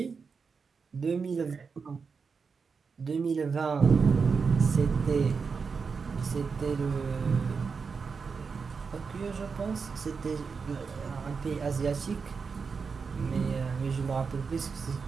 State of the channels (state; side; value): quieter; left; 5.3 dB